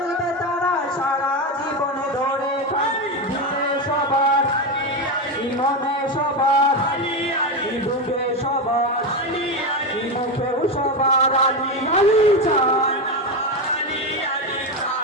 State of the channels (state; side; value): normal; both; correlation 0.14